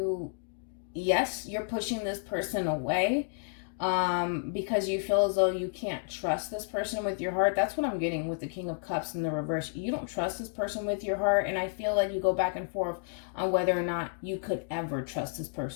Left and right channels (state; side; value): silent; right; digital silence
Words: you're pushing this person away because you feel as though you can't trust this person with your heart. That's what I'm getting with the King of Cups in the reverse. You don't trust this person with your heart, and I feel like you go back and forth on whether or not you could ever trust this